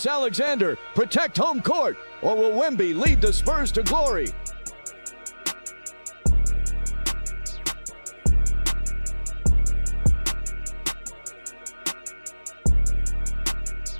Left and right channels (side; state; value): both; inverted; correlation -1.00